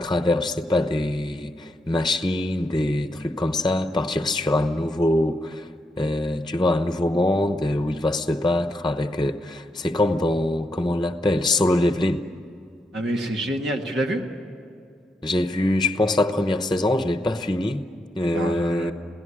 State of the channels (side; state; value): both; normal; correlation 0.81